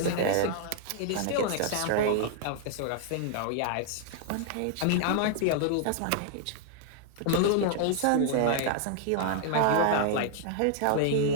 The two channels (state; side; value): different; both; correlation -0.01